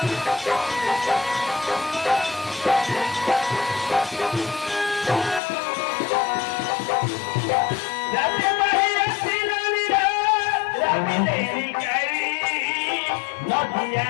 রাতে বাহিরে সিনালিরা রাতে কাই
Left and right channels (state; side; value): drops out; right; at 5.4 s